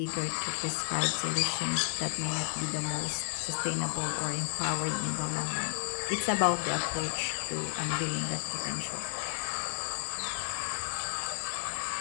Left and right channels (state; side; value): silent; right; 56 dB below the other